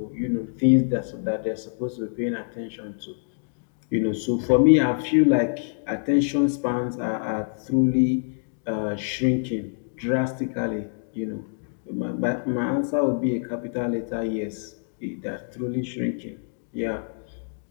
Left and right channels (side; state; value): right; silent; digital silence